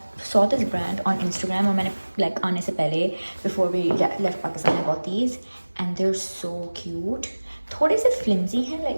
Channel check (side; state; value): both; inverted; correlation -1.00